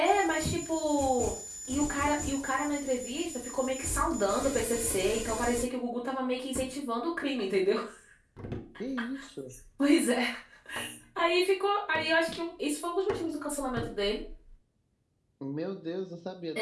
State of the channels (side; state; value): both; identical; correlation 1.00